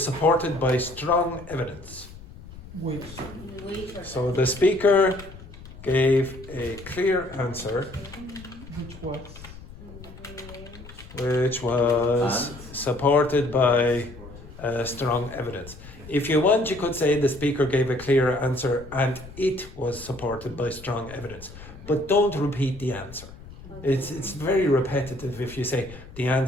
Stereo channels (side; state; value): left; noise; rumble, 17 dB below the sound